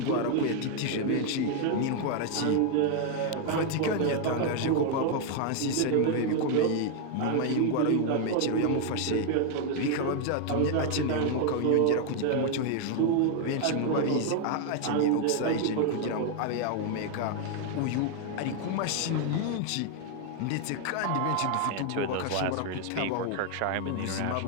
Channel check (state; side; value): different; both; correlation 0.00